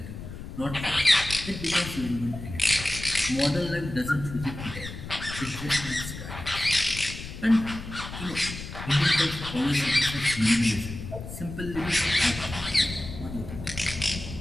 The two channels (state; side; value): noise; left; rumble, 10 dB below the sound